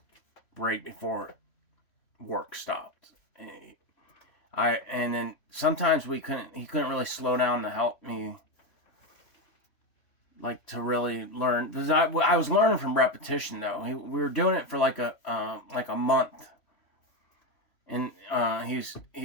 right before work stopped. And then sometimes he couldn't really slow down to help me, like, to really learn, because I was learning from repetition though. We were doing it for like a month, and he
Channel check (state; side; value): late; right; 3.1 ms